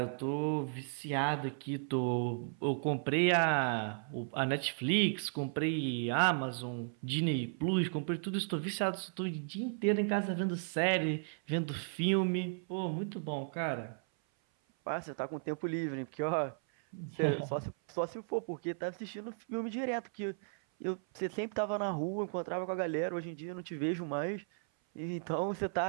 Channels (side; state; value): left; silent; 54 dB below the other